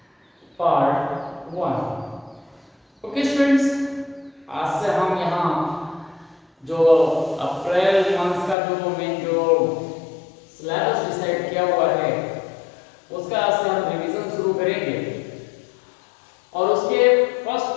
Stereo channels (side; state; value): right; drops out; at 8.6 s